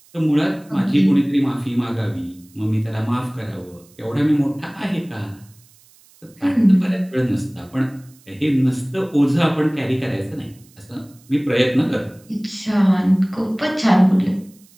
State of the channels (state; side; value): noise; right; hiss, 29 dB below the sound